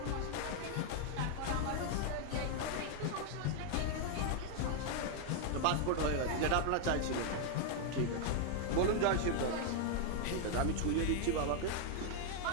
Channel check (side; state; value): both; different; correlation 0.00